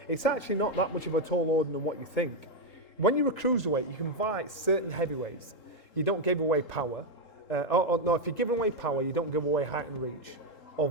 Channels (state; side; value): late; right; 3.7 ms